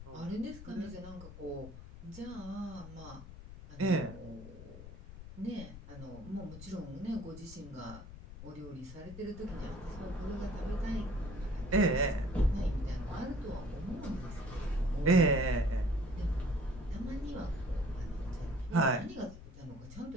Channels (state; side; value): noise; left; rumble, 13 dB below the sound